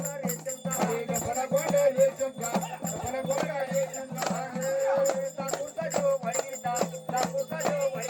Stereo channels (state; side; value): identical; both; correlation 1.00